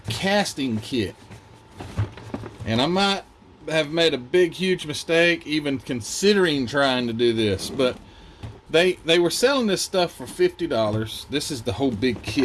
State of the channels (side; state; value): both; identical; correlation 1.00